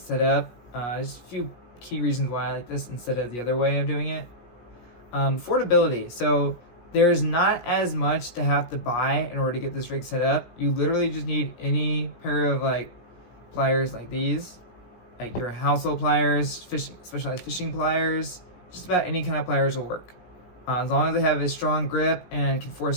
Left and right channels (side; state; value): right; late; 16 ms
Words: set up. Just a few key reasons why I like this instead of the other way of doing it. Affordability. So there's not as much to have to buy in order to get this rig set up. You literally just need any pair of pliers like these, like your household pliers, specialized fishing pliers. Just about any kind of pliers will work. As long as they have a strong grip and can